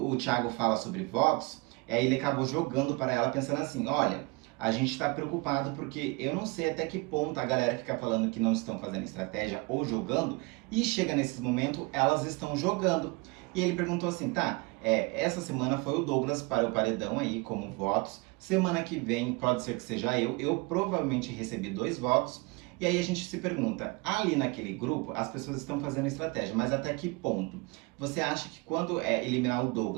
o Thiago fala sobre votos, ele acabou jogando para ela pensando assim, olha, a gente está preocupado porque eu não sei até que ponto a galera fica falando que não estão fazendo estratégia ou jogando, e chega nesses momentos, elas estão jogando. E ele perguntou assim, tá, essa semana foi o Douglas para o paredão aí, como votos, semana que vem pode ser que seja eu provavelmente recebi 2 votos, e aí a gente se pergunta, ali naquele grupo as pessoas estão fazendo estratégia, mas até que ponto? Você acha que quando eliminar o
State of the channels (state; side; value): quieter; left; 27.1 dB